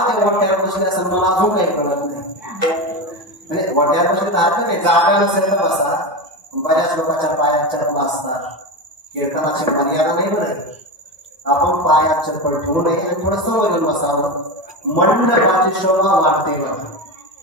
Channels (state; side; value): normal; both; correlation 0.20